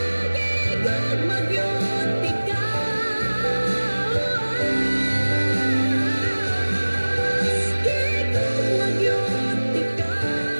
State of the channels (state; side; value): inverted; both; correlation -1.00